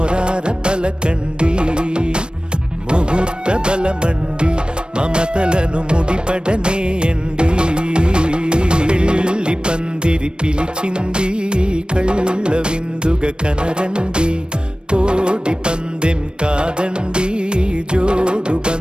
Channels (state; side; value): late; left; 0.053 ms